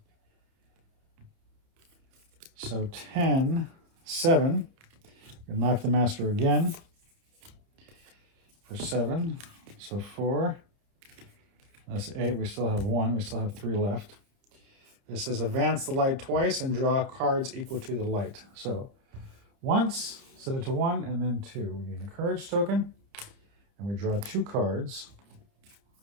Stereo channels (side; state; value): left; late; 29 ms